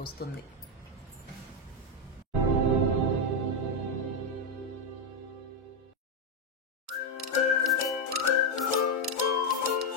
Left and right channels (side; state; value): both; normal; correlation 0.05